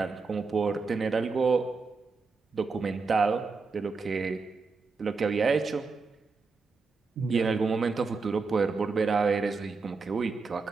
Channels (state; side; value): quieter; left; 4.4 dB